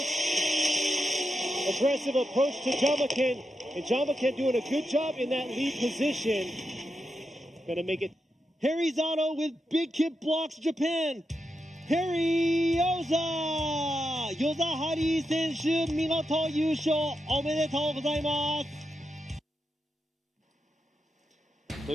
aggressive approach to Jamakan. And Jamakan doing a good job in that lead position. Gonna make it. Harry Zato with Big Kid Blocks Japan. Harry Yoza! ヨザハリー選手、見事優勝おめでとうございます。と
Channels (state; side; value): normal; both; correlation 0.87